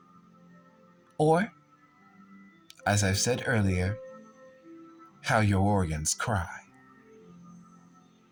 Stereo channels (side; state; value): both; identical; correlation 1.00